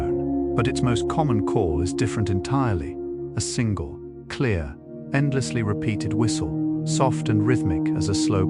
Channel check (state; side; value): identical; both; correlation 1.00